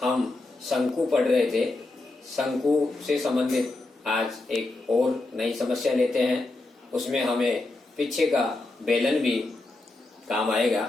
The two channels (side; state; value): right; quieter; 3.0 dB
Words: हम शंकु पढ़ रहे थे। शंकु से संबंधित आज एक और नई समस्या लेते हैं। उसमें हमें पीछे का बेलन भी काम